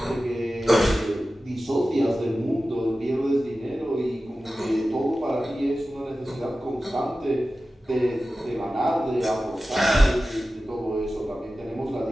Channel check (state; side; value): normal; both; correlation 0.95